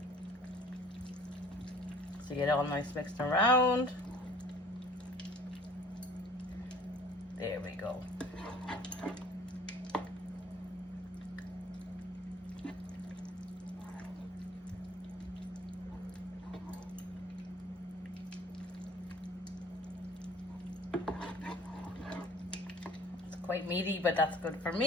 So you get it all nice mixed around. There we go. Quite meaty, but that's good for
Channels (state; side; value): normal; both; correlation 0.50